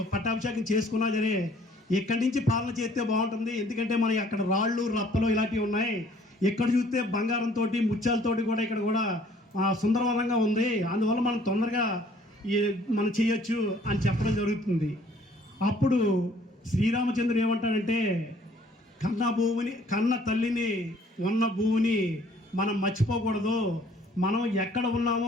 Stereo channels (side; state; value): both; normal; correlation 0.59